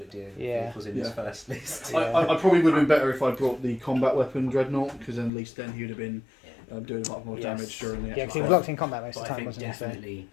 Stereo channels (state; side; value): drops out; right; at 5.3 s